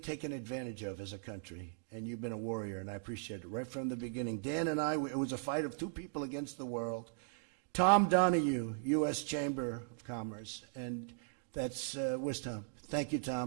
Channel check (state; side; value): silent; left; digital silence